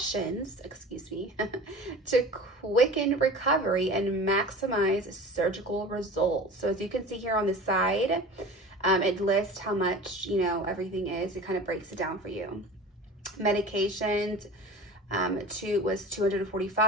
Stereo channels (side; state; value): both; normal; correlation 0.37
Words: to quicken recovery and maximize surgical results. So as you can see here on the side, it lists how much, everything is. It kind of breaks it down for you. Medications, was